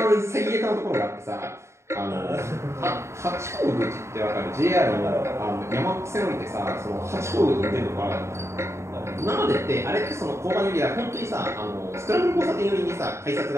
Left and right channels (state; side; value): late; left; 0.13 ms